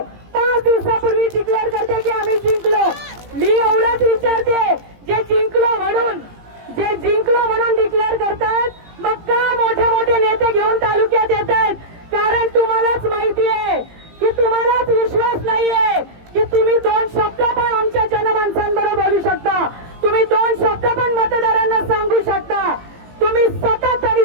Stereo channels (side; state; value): left; late; 17 ms